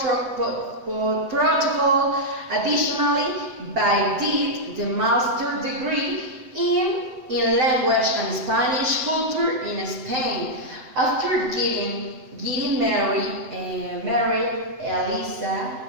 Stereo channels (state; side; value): late; left; 7.9 ms